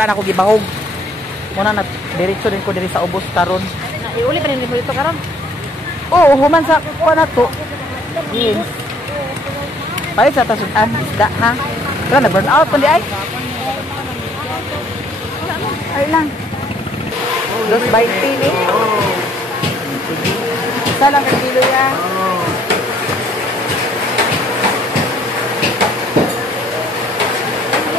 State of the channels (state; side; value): normal; both; correlation 0.62